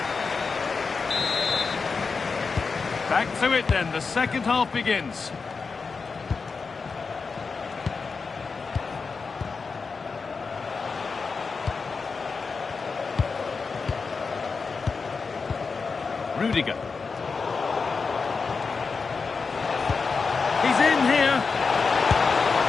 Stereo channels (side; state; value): right; quieter; 4.8 dB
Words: Back to it then, the second half begins. Rudiger. He's in here.